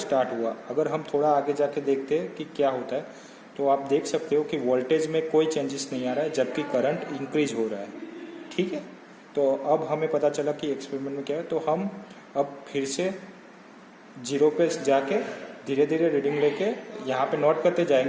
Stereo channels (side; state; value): both; identical; correlation 1.00